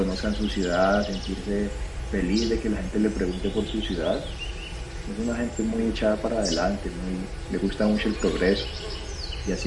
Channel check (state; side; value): identical; both; correlation 1.00